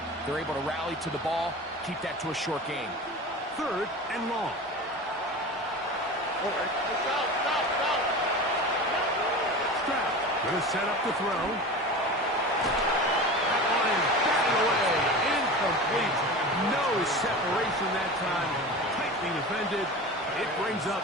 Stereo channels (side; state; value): both; normal; correlation 0.32